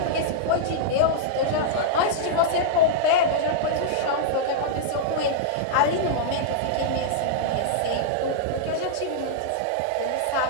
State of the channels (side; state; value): both; different; correlation -0.02